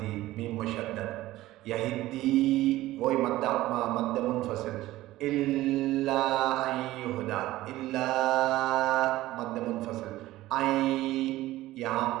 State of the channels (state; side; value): quieter; left; 16.4 dB